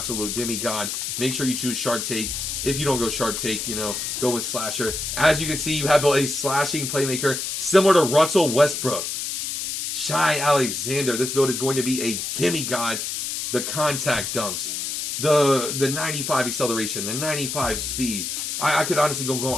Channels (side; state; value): left; noise; hiss, 3 dB below the sound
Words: demigod. Make sure you choose sharp take. If you don't go sharp take, you know, go with slasher. As you can see, you have built a slashing playmaker similar to Russell Westbrook. Shai Alexander. This build is going to be a demigod. The contact dunks, the 95 acceleration, the 95 speed. I could honestly